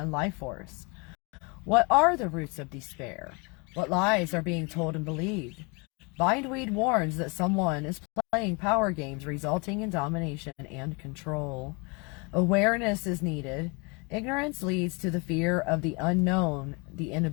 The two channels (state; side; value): quieter; right; 30.5 dB